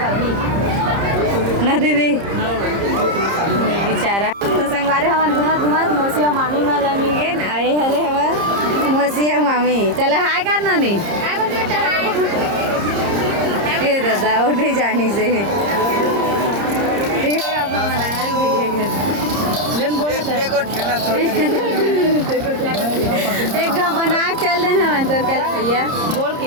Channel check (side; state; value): left; late; 30 ms